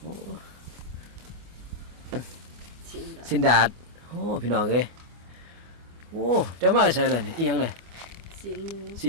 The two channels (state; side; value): late; left; 24 ms